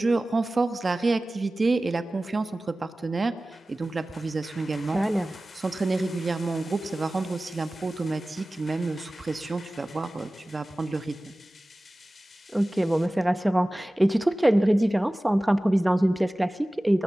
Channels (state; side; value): normal; both; correlation 0.97